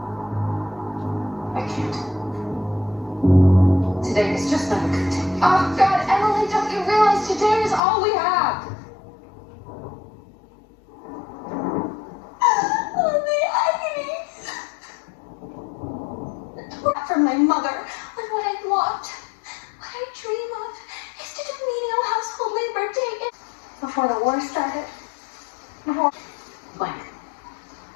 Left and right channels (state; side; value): drops out; right; at 7.8 s